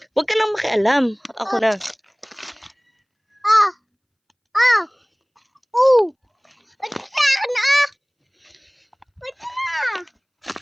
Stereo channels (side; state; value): both; identical; correlation 1.00